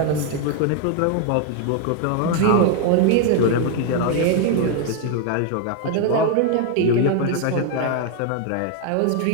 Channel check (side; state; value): both; different; correlation 0.01